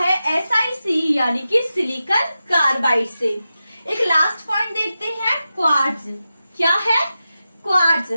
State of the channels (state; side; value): inverted; both; correlation -0.92